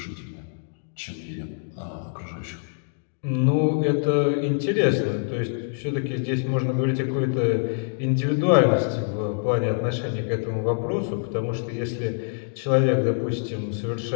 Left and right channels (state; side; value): silent; right; digital silence